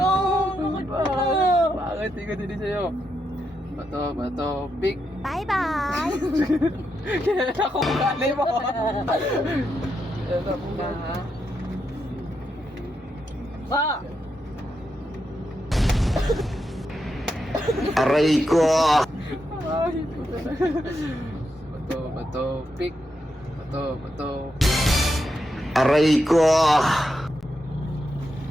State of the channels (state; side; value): normal; both; correlation 0.84